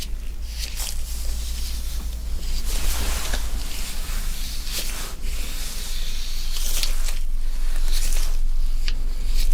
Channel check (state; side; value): identical; both; correlation 1.00